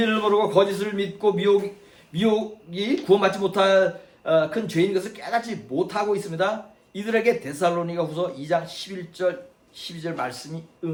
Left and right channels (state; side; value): identical; both; correlation 1.00